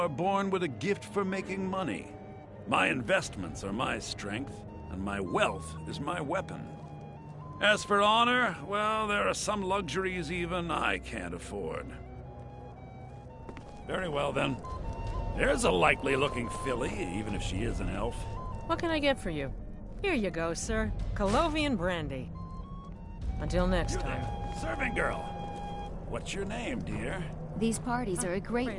born with a gift for making money. My investments are my strength, and my wealth is my weapon. As for honor, well, there are some luxuries even I can't afford. Very well, then. There's a likely-looking filly, even if she is an elf. What can I get for you? Here you go, sir. Colovian brandy. Until next time. Serving girl. What's your name, dear? These parties are a great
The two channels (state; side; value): identical; both; correlation 1.00